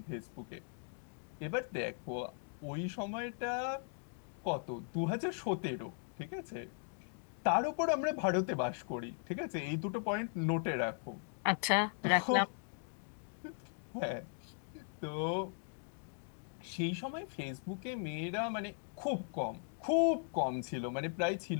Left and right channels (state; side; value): silent; right; 52 dB below the other